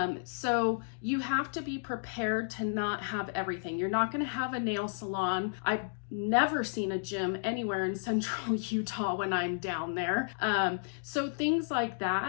So you have to be prepared to not have everything. You're not going to have a nail salon. I've never seen a gym anywhere in central Utah when I'm down there. So things like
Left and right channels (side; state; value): right; silent; digital silence